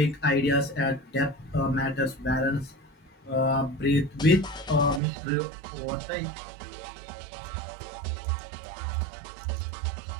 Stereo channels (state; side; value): drops out; left; at 5.0 s